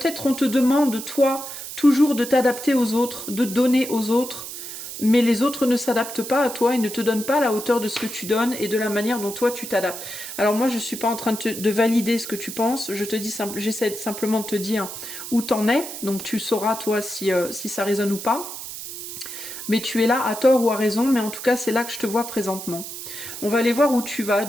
on te demande, toi, toujours de t'adapter aux autres, de donner aux autres, mais les autres ne s'adaptent pas à toi et ne te donnent pas la hauteur de ce que tu donnes et de la manière dont toi tu t'adaptes. Alors moi je ne suis pas en train de valider ce que tu penses, j'essaie simplement de te dire où t'en es, donc tu sauras toi si ça résonne ou pas. Mais tu es là à tort ou à raison, mais en tout cas c'est là que je te vois présentement. On va aller voir où tu vas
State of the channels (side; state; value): right; noise; hiss, 9 dB below the sound